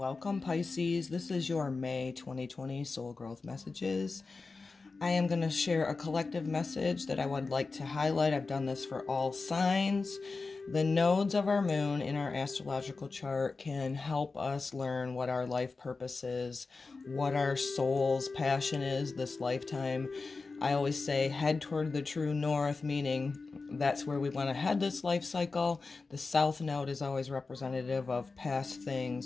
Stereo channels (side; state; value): right; quieter; 4.0 dB